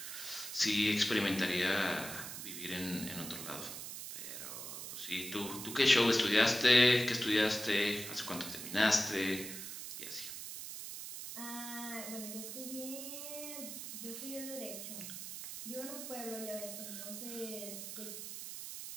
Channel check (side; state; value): right; noise; hiss, 8 dB below the sound